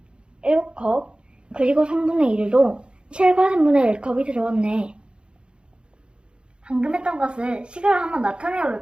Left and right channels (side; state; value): left; late; 0.054 ms